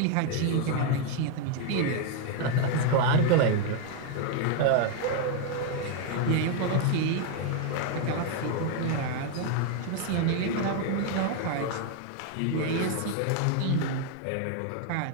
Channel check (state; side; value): different; both; correlation 0.00